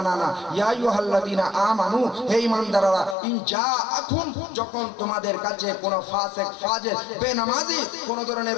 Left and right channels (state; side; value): drops out; right; at 3.2 s